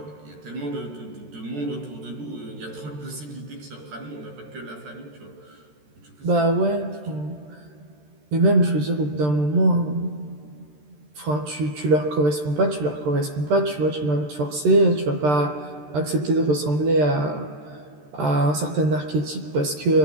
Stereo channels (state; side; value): late; left; 13 ms